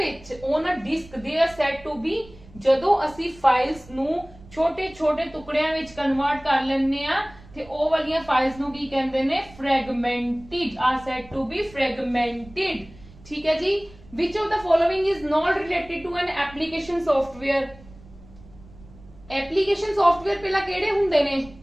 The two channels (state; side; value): noise; right; rumble, 22 dB below the sound